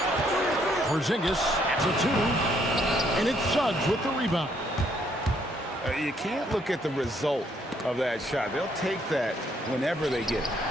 Porzingis to 2. And it's Suggs with the rebound. You can't look at the result of that shot. They'll take that whenever they get it.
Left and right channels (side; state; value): both; normal; correlation 0.69